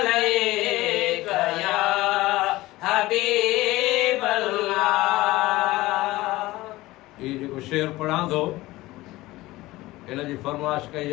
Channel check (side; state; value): right; quieter; 18.5 dB